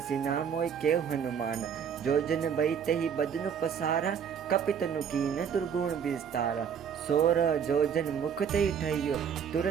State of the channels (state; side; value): quieter; left; 7.6 dB